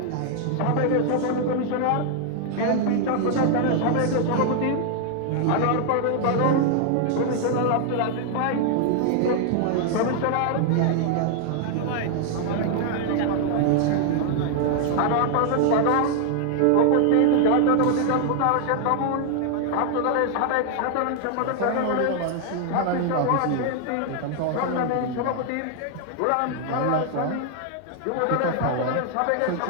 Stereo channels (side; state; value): both; different; correlation 0.00